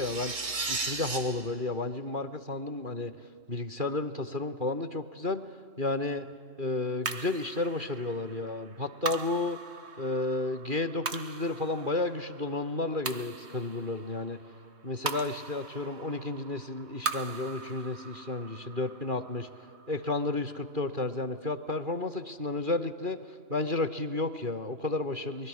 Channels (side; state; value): left; late; 3.2 ms